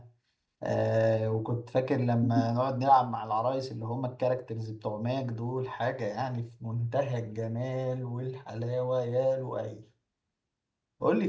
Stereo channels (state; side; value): identical; both; correlation 1.00